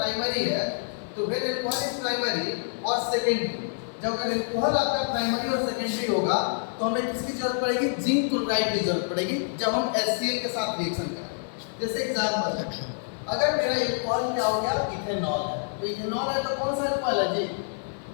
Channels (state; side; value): silent; right; 60 dB below the other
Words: है तो फिर अल्कोहल इज प्राइमरी और सेकेंडरी। जब अगर अल्कोहल आपका प्राइमरी और सेकेंडरी होगा तो हमें किसकी जरूरत पड़ेगी, जिंक क्लोराइड की जरूरत पड़ेगी जब हम HCl के साथ रिएक्शन करें। जैसे एग्जांपल है, अगर मेरा अल्कोहल क्या हो गया, इथेनॉल है, तो इथेनॉल है तो कौन सा अल्कोहल है जी,